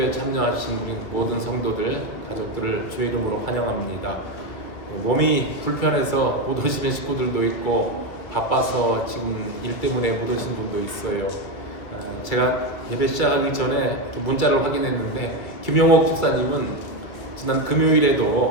참여하신 우리 모든 성도들, 가족들을 주의 이름으로 환영합니다. 몸이 불편해서 못 오시는 식구들도 있고 바빠서 지금 일 때문에 못 오신 분도 있어요. 제가 예배 시작하기 전에 문자를 확인했는데 김영옥 집사님은 지난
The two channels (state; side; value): late; right; 2.1 ms